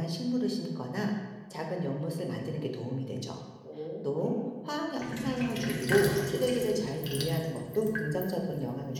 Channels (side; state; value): both; identical; correlation 1.00